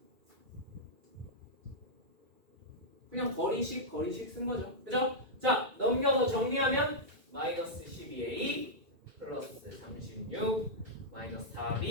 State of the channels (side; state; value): left; late; 2.3 ms